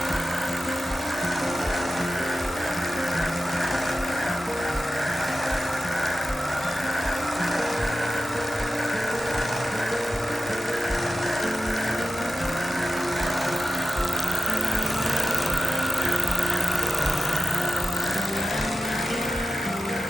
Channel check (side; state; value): both; normal; correlation 0.93